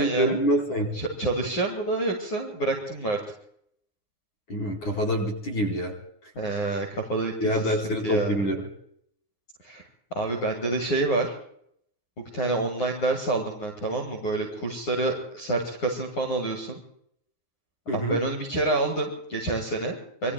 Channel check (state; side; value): late; right; 9.6 ms